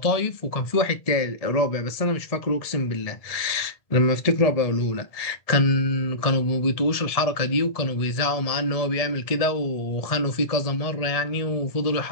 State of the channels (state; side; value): late; right; 1.7 ms